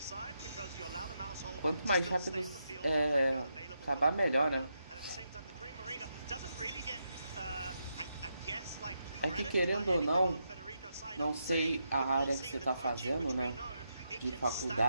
Quanto mais rápido acabar, melhor, né? É que querendo ou não, não sei a área que você está fazendo, né? De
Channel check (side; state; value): both; inverted; correlation -0.83